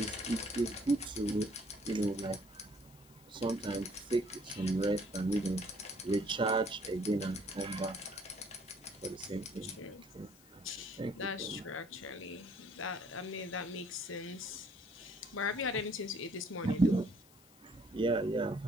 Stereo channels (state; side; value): noise; left; hiss, 25 dB below the sound